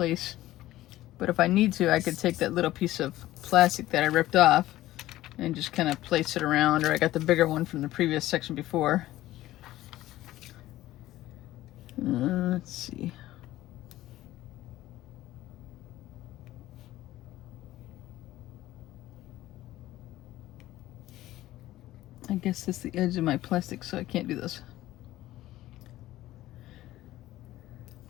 But if I need to, I could take that little piece of plastic that I ripped off and just kind of place it around, or I got the bigger one from the previous section before. Let's see. I guess that's the edge of my plastic, so I can't do this.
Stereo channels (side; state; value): right; quieter; 15.5 dB